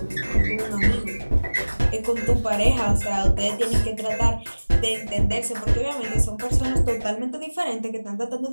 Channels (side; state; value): both; inverted; correlation -1.00